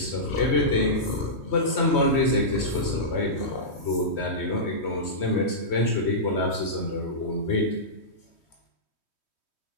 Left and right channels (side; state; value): right; late; 3.1 ms